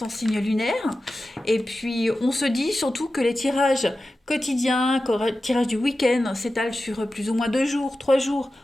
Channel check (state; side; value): normal; both; correlation 0.94